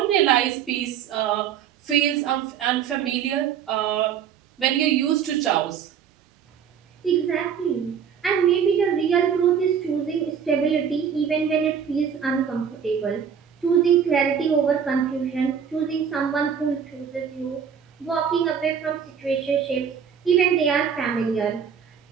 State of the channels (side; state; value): left; quieter; 7.7 dB